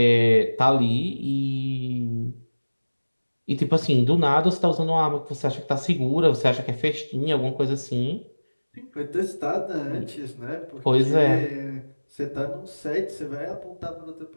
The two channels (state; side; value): inverted; both; correlation -1.00